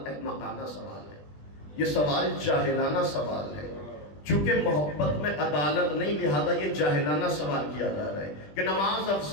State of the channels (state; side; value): late; right; 20 ms